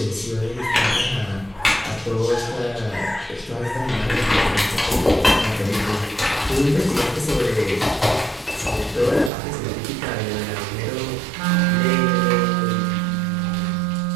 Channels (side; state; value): left; drops out; at 9.3 s